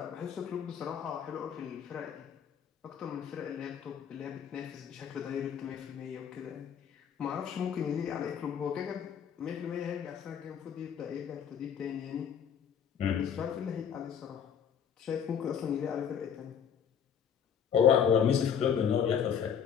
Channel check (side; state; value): right; quieter; 8.0 dB